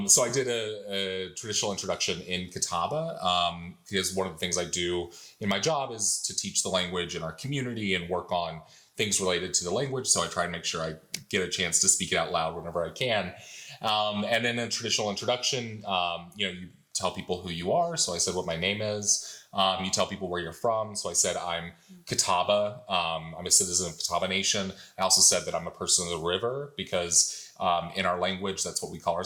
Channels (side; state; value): both; identical; correlation 1.00